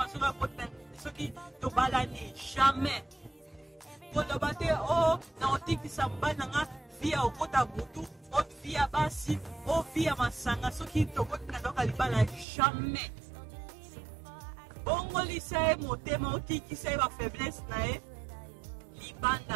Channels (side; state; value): left; drops out; at 12.5 s